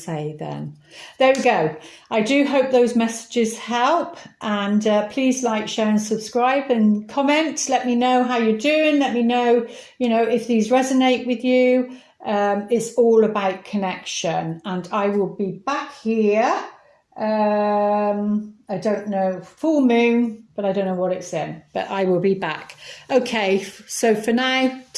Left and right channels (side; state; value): both; identical; correlation 1.00